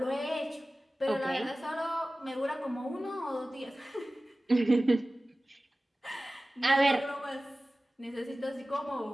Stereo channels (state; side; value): normal; both; correlation 0.97